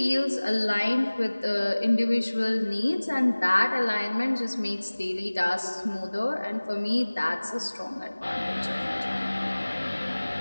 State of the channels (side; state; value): both; inverted; correlation -1.00